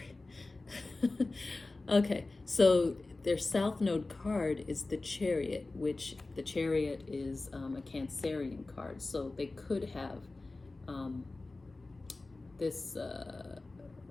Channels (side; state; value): right; quieter; 3.3 dB